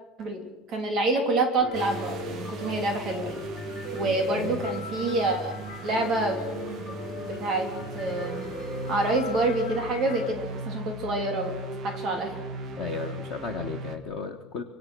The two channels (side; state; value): both; normal; correlation 0.36